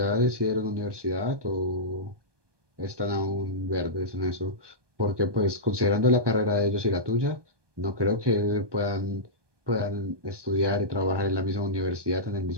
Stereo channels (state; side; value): late; left; 1.2 ms